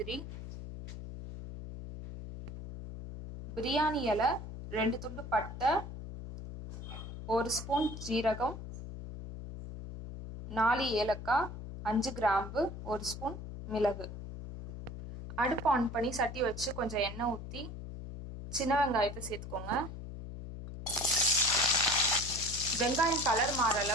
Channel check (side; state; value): left; noise; hum, 10 dB below the sound